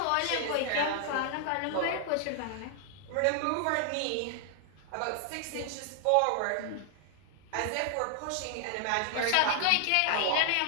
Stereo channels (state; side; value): different; both; correlation 0.00